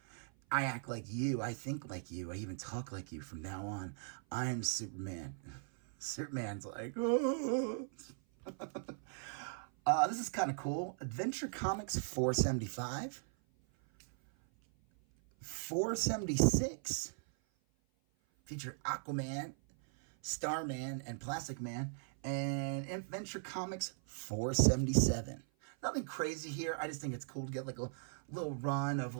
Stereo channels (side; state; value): left; silent; 52 dB below the other